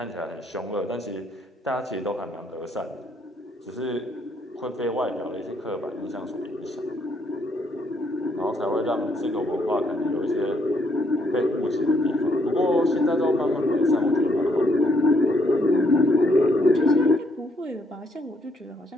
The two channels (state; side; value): normal; both; correlation 0.71